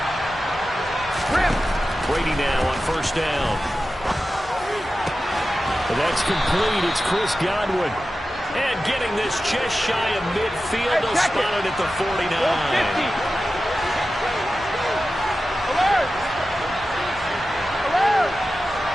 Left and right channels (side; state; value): both; normal; correlation 0.93